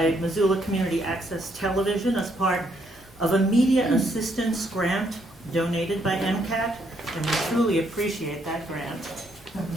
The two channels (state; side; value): normal; both; correlation 0.73